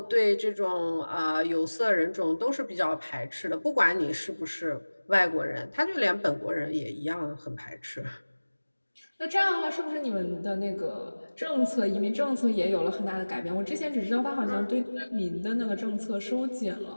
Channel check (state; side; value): inverted; both; correlation -1.00